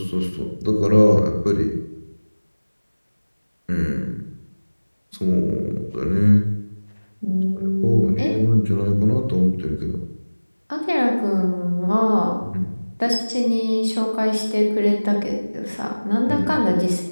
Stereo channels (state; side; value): inverted; both; correlation -1.00